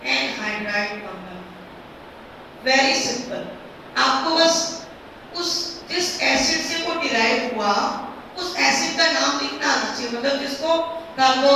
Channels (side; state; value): both; identical; correlation 1.00